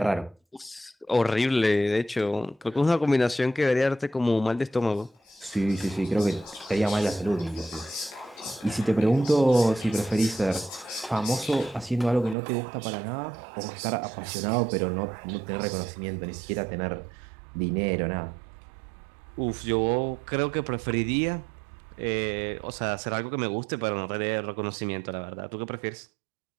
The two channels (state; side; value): drops out; left; at 12.4 s